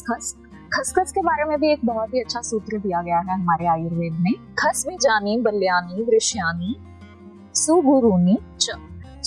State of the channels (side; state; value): both; identical; correlation 1.00